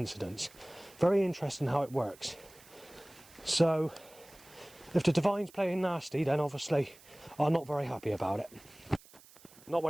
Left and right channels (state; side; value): noise; right; hiss, 23 dB below the sound